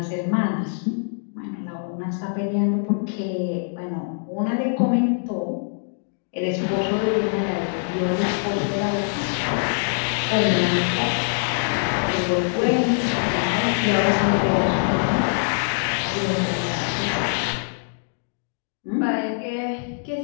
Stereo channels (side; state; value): right; silent; digital silence